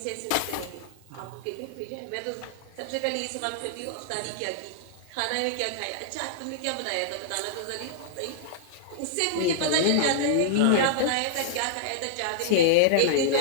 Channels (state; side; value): different; both; correlation -0.02